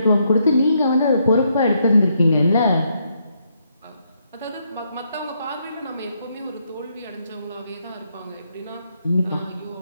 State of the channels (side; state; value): both; inverted; correlation -0.76